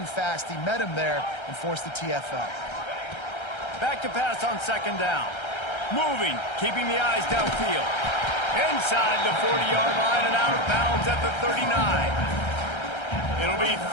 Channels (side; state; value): right; late; 1.3 ms